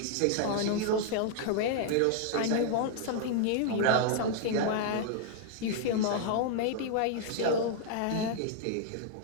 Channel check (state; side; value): different; both; correlation 0.00